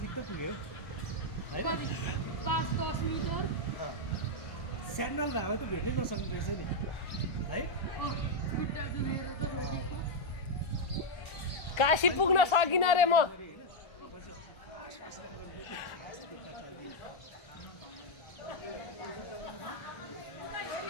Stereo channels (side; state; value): right; late; 1.3 ms